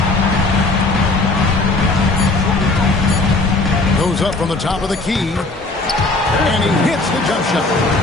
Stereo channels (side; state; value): right; quieter; 3.2 dB